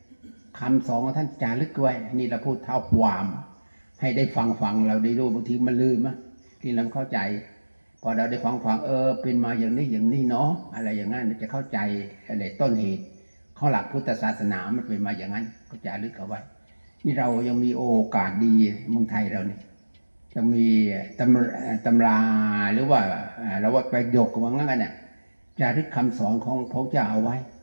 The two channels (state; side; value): inverted; both; correlation -1.00